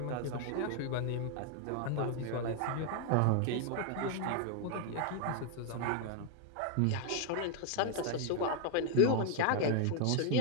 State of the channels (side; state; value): both; different; correlation 0.00